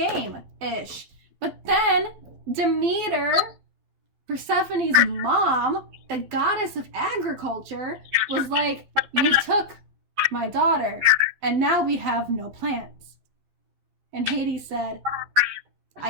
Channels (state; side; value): late; left; 12 ms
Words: But then Demeter, Persephone's mom, the goddess of agriculture, was like, you took my daughter, and now we have no plants. And Hades said,